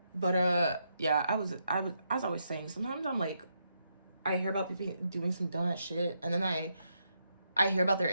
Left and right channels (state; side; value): inverted; both; correlation -0.80